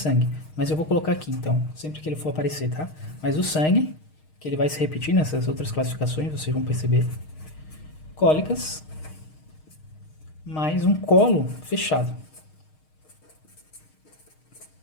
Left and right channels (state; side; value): late; right; 6.5 ms